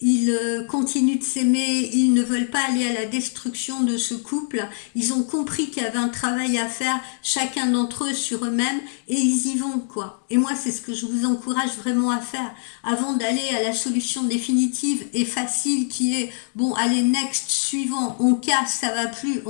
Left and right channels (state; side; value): silent; right; digital silence